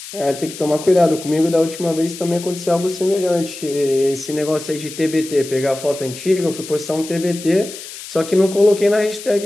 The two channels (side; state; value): left; noise; hiss, 13 dB below the sound